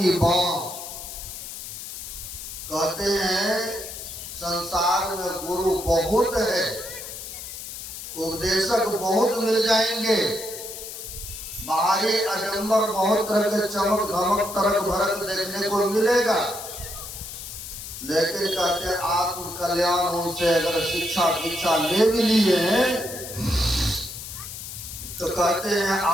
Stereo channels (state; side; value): noise; left; hiss, 10 dB below the sound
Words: बात। कहते हैं संसार में गुरु बहुत है, उपदेशक बहुत मिल जाएंगे, बाहरी आडंबर बहुत तरह के चमक धमक तरक भरक देखने को मिलेगा, लेकिन कहते हैं आत्म कल्याण उनसे अगर शिक्षा दीक्षा ले भी लिए तो कहते हैं